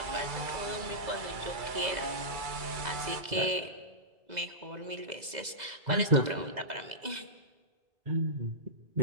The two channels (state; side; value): late; left; 2.0 ms